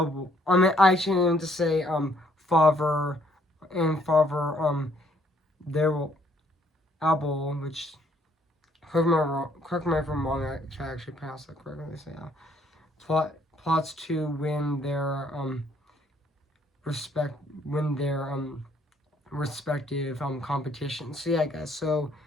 actually need to say father and father there will Abel, which correct me if I'm wrong, I actually pronounce that correctly. So yeah, plots to win their respect, win their respective competitions. So yeah, guys. So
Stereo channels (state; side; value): normal; both; correlation 0.65